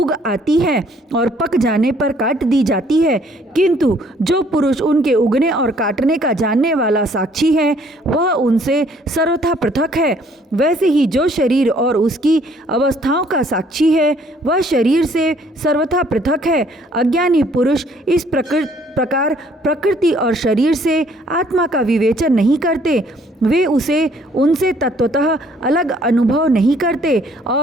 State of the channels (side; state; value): both; normal; correlation 0.62